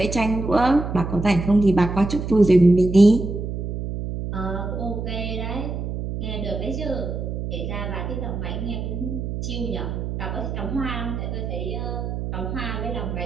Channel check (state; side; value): noise; right; hum, 4 dB below the sound